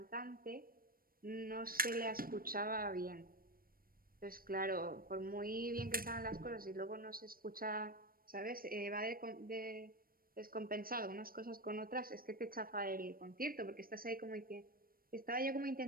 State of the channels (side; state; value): left; late; 0.42 ms